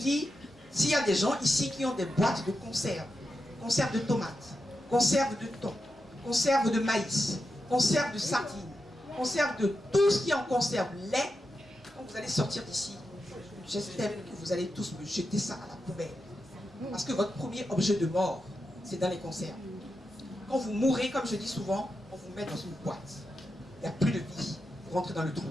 s'il y a des gens ici qui ont des boîtes de conserve, conserve de tomates, conserve de thon, conserve de maïs, conserve de sardines, conserve de tout ce qui est en conserve, lait, quand vous allez sortir d'ici, j'estime que vous allez tous me jeter ça à la poubelle. Parce que votre premier objet de mort, c'est dans les conserves. Quand vous mourrez, comme je dis souvent, on vous met dans une boîte. Il n'y a plus de vie. Vous rentrez dans le trou.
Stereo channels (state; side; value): normal; both; correlation 0.88